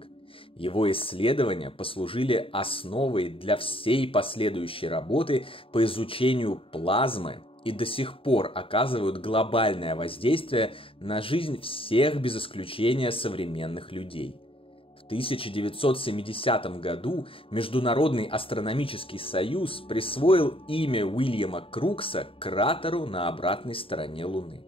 Его исследования послужили основой для всей последующей работы по изучению плазмы и до сих пор оказывают глобальное воздействие на жизнь всех без исключения современных людей. В 1970 году Международный астрономический союз присвоил имя Уильяма Крукса кратеру на обратной стороне Луны.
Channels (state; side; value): late; right; 0.26 ms